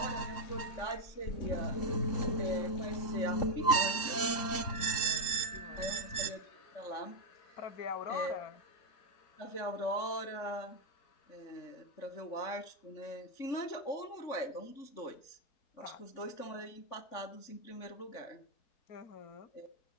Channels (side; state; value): right; late; 3.7 ms